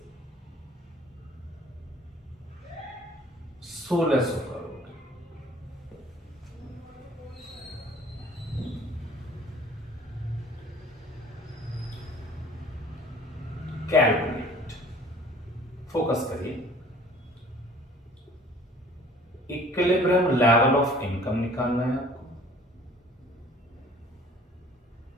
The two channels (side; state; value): both; normal; correlation 0.51